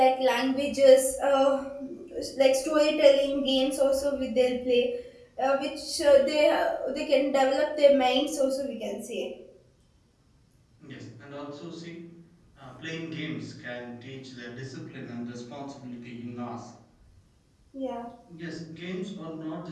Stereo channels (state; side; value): identical; both; correlation 1.00